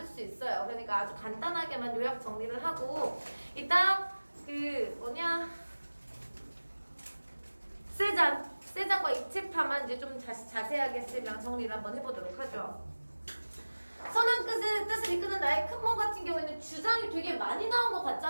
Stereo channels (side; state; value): both; inverted; correlation -1.00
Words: 수 있어요. 그러니까 아주 간단하게만 요약 정리를 하고 일단 그 뭐냐 세잔과 입체파만 이제 좀 자세하게 쌤이랑 정리를 한번 해보도록 하죠. 선한 뜻을 이끄는 나의 큰 몸 같은 경우에는 주장이 되게 많이 나온 것